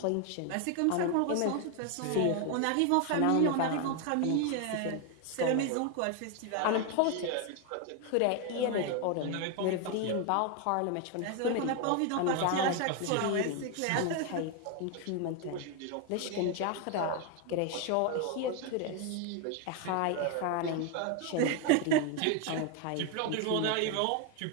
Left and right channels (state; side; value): different; both; correlation 0.01